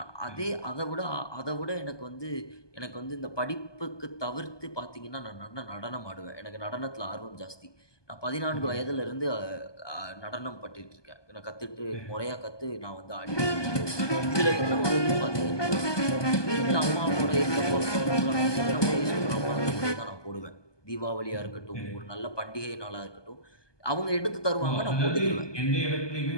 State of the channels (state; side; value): late; right; 1.2 ms